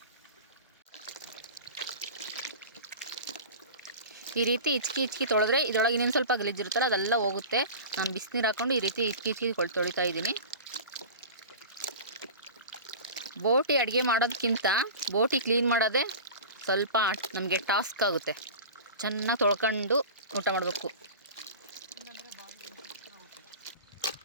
ಈ ರೀತಿ ಇಚ್ಕಿ ತೊಳೆದ್ರೆ ಇದರೊಳಗೆ ಇನ್ನೊಂದು ಸ್ವಲ್ಪ ಗಲೀಜಿರುತ್ತಲ್ಲ ಅದೆಲ್ಲ ಹೋಗುತ್ತೆ. ನಾನು ಬಿಸಿನೀರು ಹಾಕ್ಕೊಂಡು ಈ ರೀತಿ ಇಚ್ಕಿ ತೊಳಿತಾ ಇದ್ದೀನಿ. ಬೋಟಿ ಅಡುಗೆ ಮಾಡೋದಕ್ಕಿಂತ ಬೋಟಿ ಕ್ಲೀನ್ ಮಾಡೋದೇ ಸ್ವಲ್ಪ ನಮಗೆ ಟಾಸ್ಕ್ ಆಗುತ್ತೆ. ಚೆನ್ನಾಗಿ ತೊಳ್ಕೊಂಡು ಊಟ ಮಾಡಬೇಕು.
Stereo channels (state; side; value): inverted; both; correlation -0.34